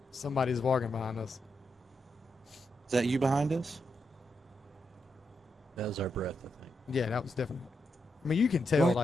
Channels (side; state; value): both; normal; correlation 0.84